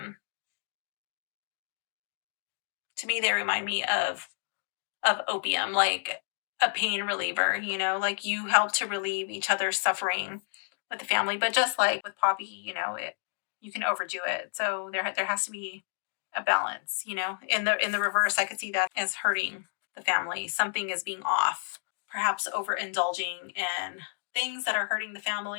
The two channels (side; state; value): right; silent; 58 dB below the other